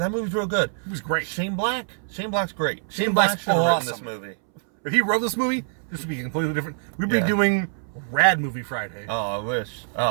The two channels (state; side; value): silent; left; 62 dB below the other